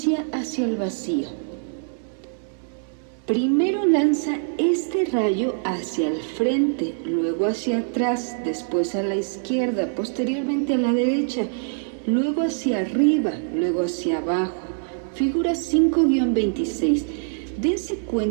hacia el vacío. Primero lanza este rayo hacia el frente, luego hacia atrás, después a la izquierda, posteriormente a la derecha, luego hacia arriba, luego hacia abajo. Figura 5-26. Dense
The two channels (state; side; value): silent; left; 62 dB below the other